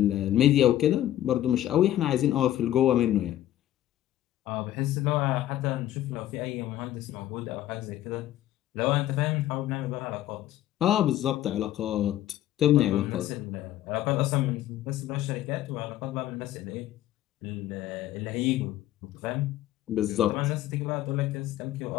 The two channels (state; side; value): quieter; right; 13.2 dB